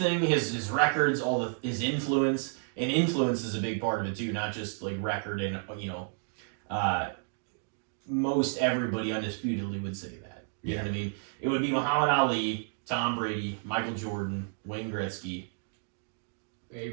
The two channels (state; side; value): silent; left; 57 dB below the other